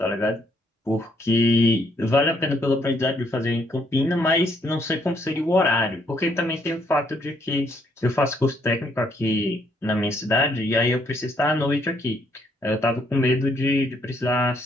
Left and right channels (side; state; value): both; normal; correlation 0.70